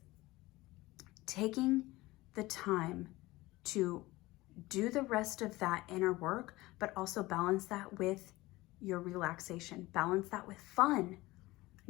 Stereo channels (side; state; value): right; quieter; 19.6 dB